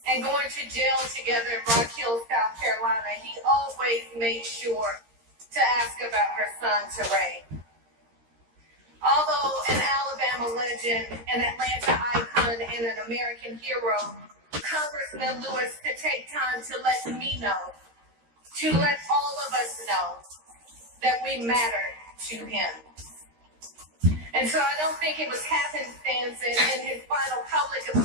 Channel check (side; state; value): left; late; 13 ms